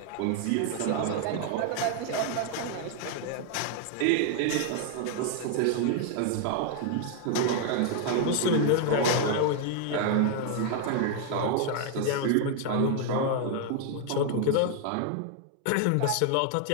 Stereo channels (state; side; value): different; both; correlation 0.00